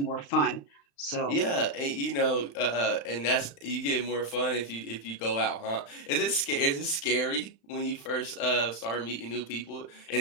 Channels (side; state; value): right; late; 35 ms